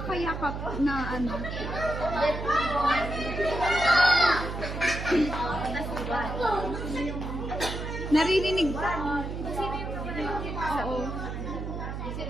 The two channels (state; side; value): noise; right; hum, 6 dB below the sound